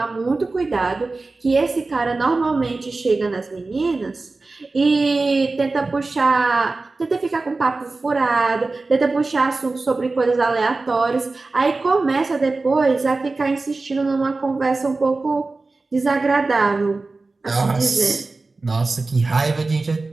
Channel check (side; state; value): left; quieter; 3.6 dB